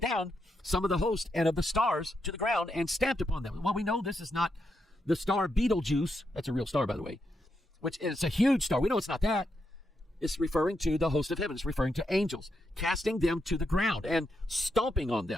down some of the host and of the stars to the ground and stamped upon them. Well, we know this is not the star Betelgeuse. That's a real star, by the way, which is a huge star. We know it's not that. It's referring to the host of heaven. It's referring to angels, casting them to the ground and stomping on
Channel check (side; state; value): both; normal; correlation 0.83